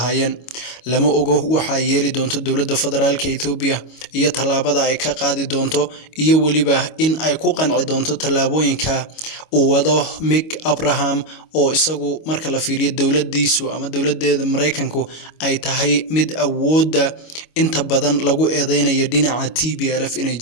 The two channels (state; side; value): late; right; 25 ms